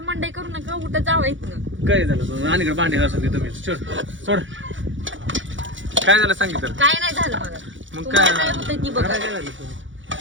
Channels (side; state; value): left; late; 0.56 ms